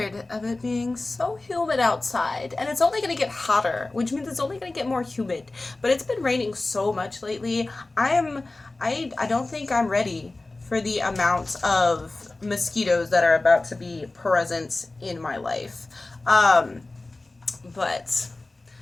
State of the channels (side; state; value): right; quieter; 3.1 dB